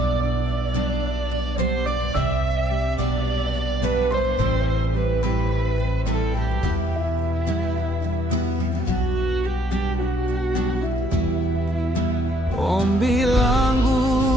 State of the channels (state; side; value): normal; both; correlation 0.66